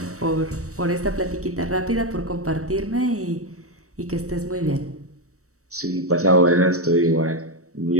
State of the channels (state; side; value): late; left; 0.65 ms